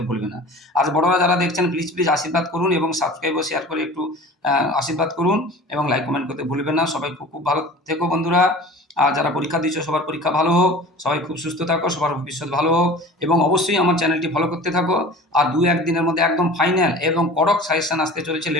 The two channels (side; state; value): both; normal; correlation 0.40